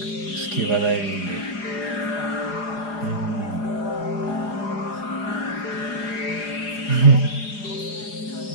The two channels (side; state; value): right; late; 4.9 ms